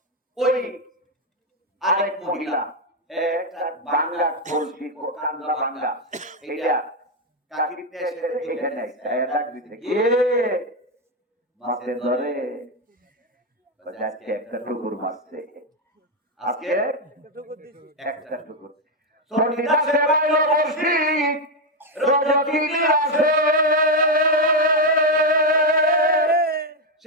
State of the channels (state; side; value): normal; both; correlation 0.04